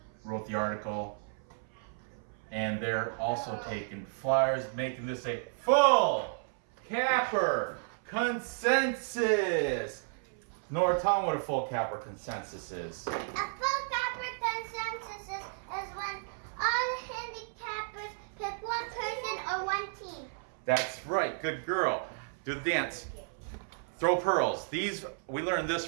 wrote the article. And they're also taking Flyers, making this a full capper consensus. Nora, tell them what a full capper consensus is. A full capper consensus is when all the handicappers pick one person or one team. That's right. Good girl. Do the dance. Throw pearls. We learned this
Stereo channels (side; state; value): left; silent; 56 dB below the other